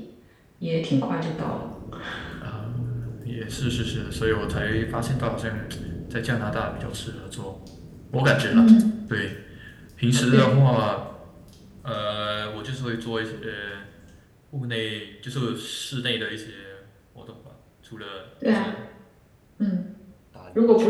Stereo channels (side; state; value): both; identical; correlation 1.00